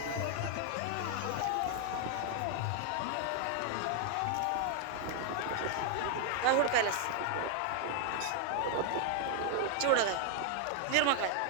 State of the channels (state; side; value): different; both; correlation 0.00